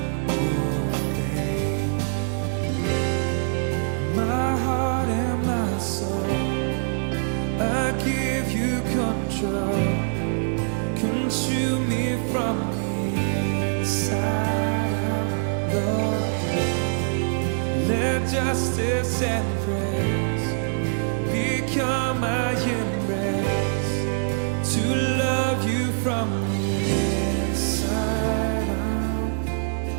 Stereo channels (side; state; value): left; silent; digital silence